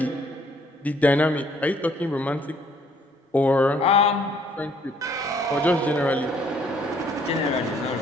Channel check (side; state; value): both; normal; correlation 0.63